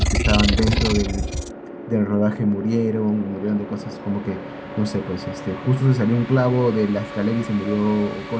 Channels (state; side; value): identical; both; correlation 1.00